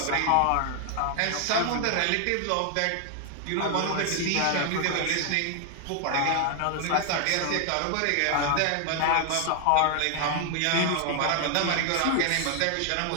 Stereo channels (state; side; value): different; both; correlation 0.00